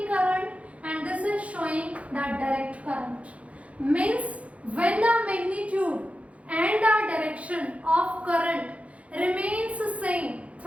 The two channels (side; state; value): left; late; 0.064 ms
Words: current and this is showing the direct current. Means when the magnitude and the direction of current remains same